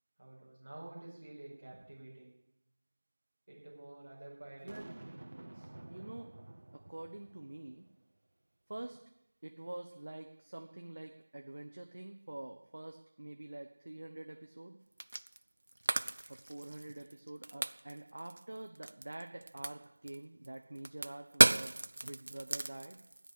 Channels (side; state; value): both; inverted; correlation -1.00